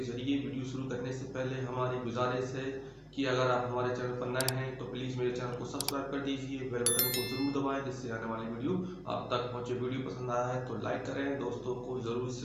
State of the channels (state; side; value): identical; both; correlation 1.00